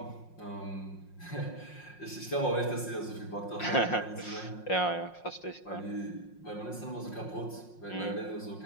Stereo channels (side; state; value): right; late; 5.6 ms